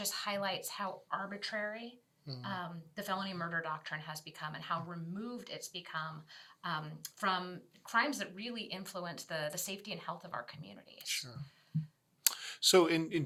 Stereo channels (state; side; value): identical; both; correlation 1.00